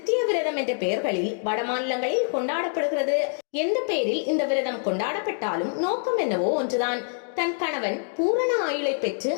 விரதம் என்ற பெயர்களில் வட மாநிலங்களில் கொண்டாடப்படுகிறது. எந்த பெயரில் இந்த விரதம் கொண்டாடப்பட்டாலும் நோக்கம் என்னவோ ஒன்றுதான். தன் கணவன் பூரண ஆயுளை பெற்று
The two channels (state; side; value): silent; right; digital silence